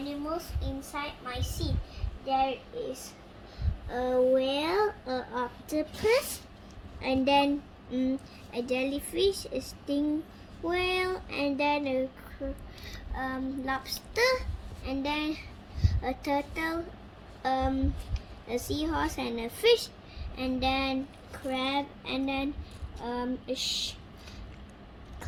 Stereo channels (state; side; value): identical; both; correlation 1.00